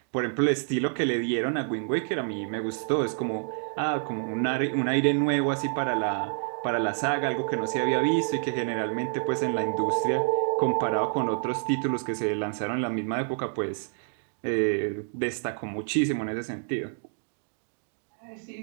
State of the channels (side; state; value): left; silent; 59 dB below the other